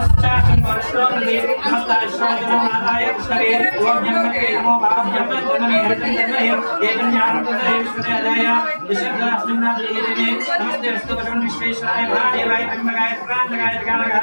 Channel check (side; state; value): both; inverted; correlation -1.00